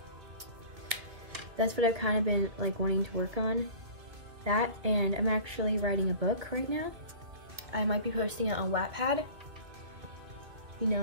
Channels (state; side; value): late; left; 2.7 ms